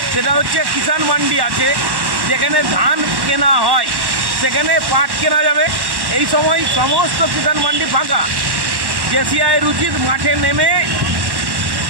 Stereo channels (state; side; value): late; left; 1.1 ms